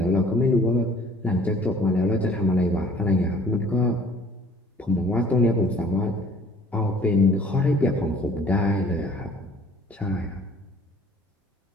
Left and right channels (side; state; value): both; normal; correlation 0.54